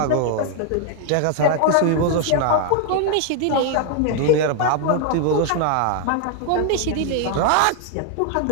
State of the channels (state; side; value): different; both; correlation 0.00